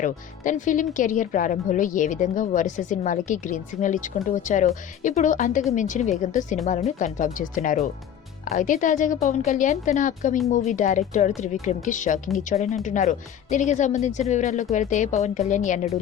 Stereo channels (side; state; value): right; quieter; 9.4 dB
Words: తన ఫిలిం కెరియర్ ప్రారంభంలో ఏ విధంగా వరుస సినిమాలకి గ్రీన్ సిగ్నల్ ఇచ్చుకుంటూ వచ్చారో ఇప్పుడు అంతకు మించిన వేగంతో సినిమాలను కన్ఫర్మ్ చేస్తున్నారు. అయితే తాజాగా పవన్ కళ్యాణ్ తన అప్కమింగ్ మూవీ డైరెక్టర్ త్రివిక్రమ్ కి షాకింగ్ ఇచ్చాడని అంటున్నారు. దీనికి సంబంధించిన వివరాల్లోకి వెళ్తే పవన్ కళ్యాణ్ ఎన్నడూ